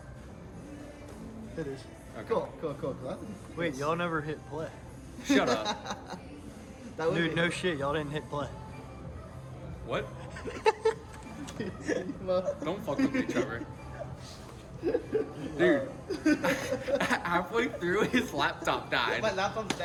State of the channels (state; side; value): identical; both; correlation 1.00